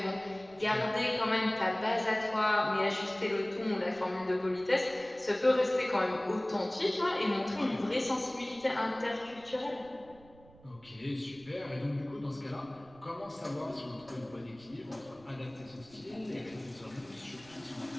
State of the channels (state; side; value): noise; right; rumble, 24 dB below the sound